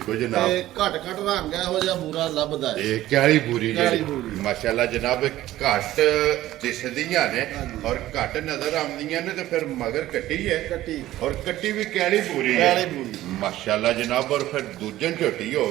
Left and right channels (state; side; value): quieter; left; 14.8 dB